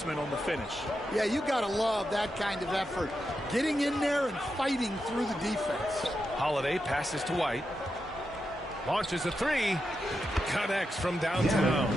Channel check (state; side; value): normal; both; correlation 0.87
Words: on the finish. Yeah, you got to love that kind of effort. Getting in there and fighting through the defense. Holiday passes to White. Launches a three. Connects from downtown.